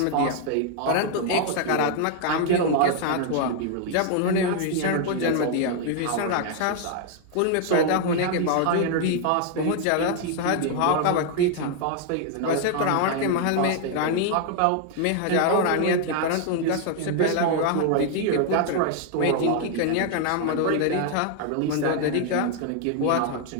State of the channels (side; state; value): both; different; correlation 0.00